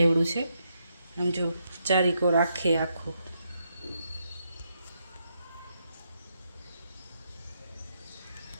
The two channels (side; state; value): both; inverted; correlation -0.79